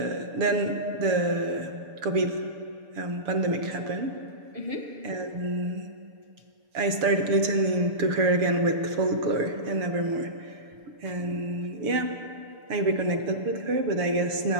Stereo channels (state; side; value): late; left; 6.8 ms